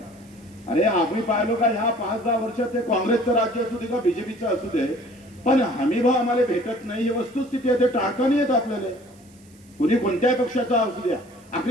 अरे आम्ही पाहिलो का ह्या 5-10 वर्षात ते काँग्रेसचं राज्य असू दे का बीजेपीचं असू दे, पण हमी भाव आम्हाला भेटत नाही, ही वस्तुस्थिती आहे. ते टाळता नाही येत आपल्याला, कुणी कोणत्याही पक्षाचा असू द्या.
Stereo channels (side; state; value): right; noise; hiss, 29 dB below the sound